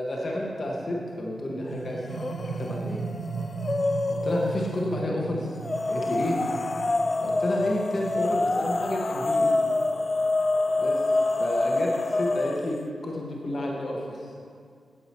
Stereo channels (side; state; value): both; normal; correlation 0.94